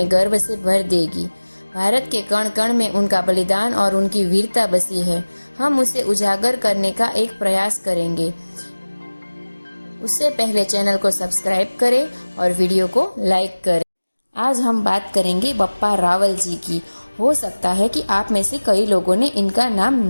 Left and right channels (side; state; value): both; inverted; correlation -1.00